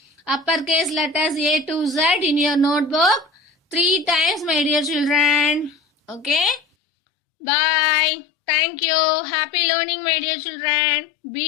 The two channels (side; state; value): right; drops out; at 6.6 s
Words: uppercase letters A to Z in your notebook 3 times, my dear children. Okay? Bye. Thank you. Happy learning, my dear children.